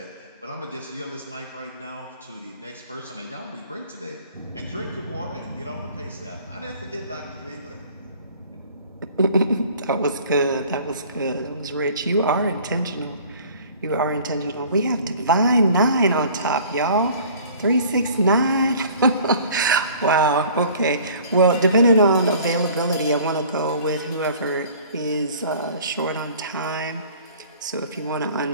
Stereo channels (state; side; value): inverted; both; correlation -0.49